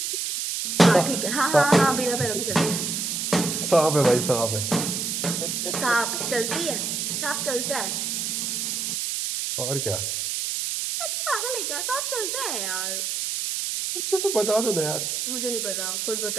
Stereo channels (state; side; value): noise; right; hiss, 1 dB below the sound